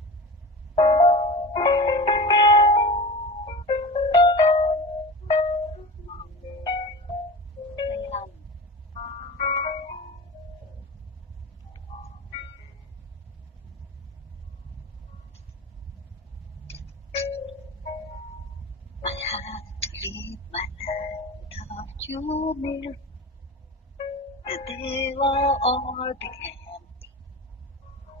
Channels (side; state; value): both; normal; correlation 0.31